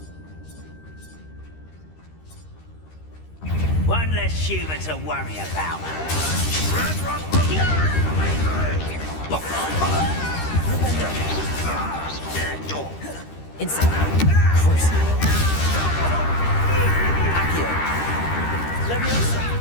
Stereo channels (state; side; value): late; right; 13 ms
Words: One less human to worry about. Incendio! Crucio! Accio! Levioso!